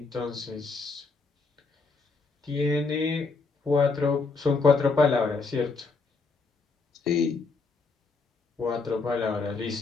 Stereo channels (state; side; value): quieter; right; 4.2 dB